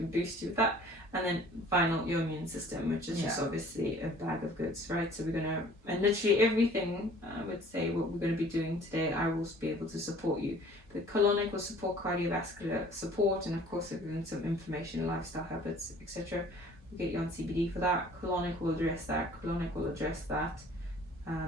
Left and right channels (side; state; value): both; normal; correlation 0.52